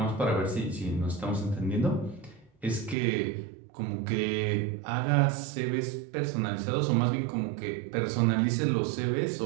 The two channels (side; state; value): left; drops out; at 3.0 s